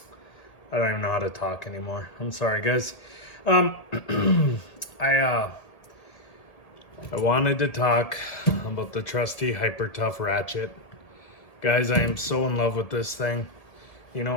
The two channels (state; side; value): late; right; 1.8 ms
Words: don't even know how to talk anymore. I'm sorry, guys. I wanted to talk about the trusty Hyper Tough ratchet. Guys, I am so in love with this thing. You